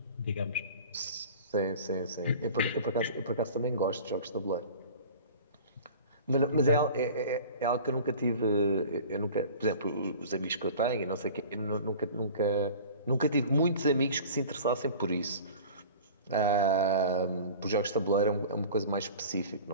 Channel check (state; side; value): inverted; both; correlation -0.41